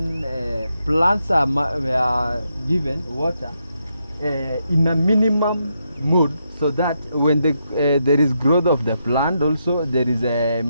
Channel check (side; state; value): both; inverted; correlation -0.81